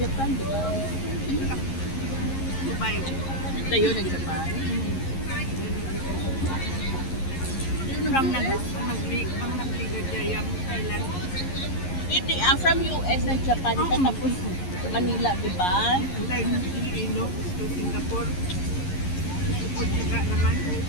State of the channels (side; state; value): right; late; 11 ms